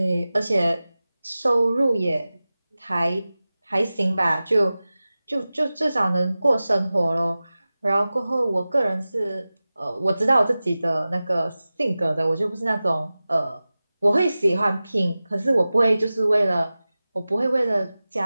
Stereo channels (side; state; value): both; inverted; correlation -0.96